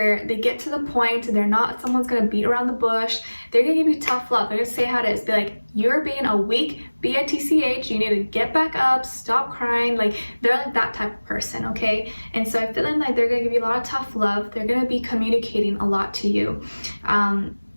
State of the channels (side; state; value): both; inverted; correlation -1.00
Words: get to the point. They're not someone's gonna beat around the bush. They're gonna give you tough love. They're gonna say how it is. Be like, you're being a weak bitch, you need to get back up, stop crying. Like, they're like that type of person, okay? And so I'm feeling like they're gonna give you a lot of tough love. They're gonna be communicating a lot to you,